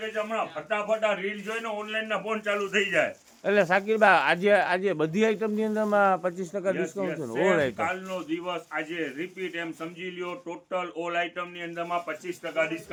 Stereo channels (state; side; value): identical; both; correlation 1.00